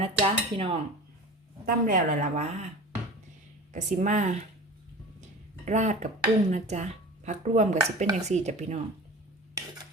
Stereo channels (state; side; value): normal; both; correlation 0.37